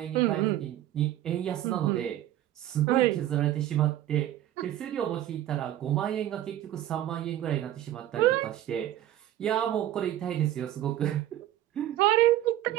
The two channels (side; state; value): left; quieter; 13.0 dB